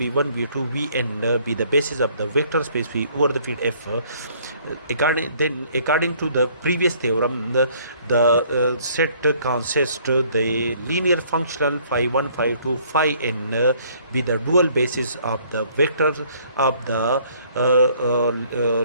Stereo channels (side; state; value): both; inverted; correlation -0.61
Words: v2, vn be the basis of the vector space V over the field F. According to the previous theorem, the set consists the linear functional phi1, phi2, phi be the dual basis of the vector of the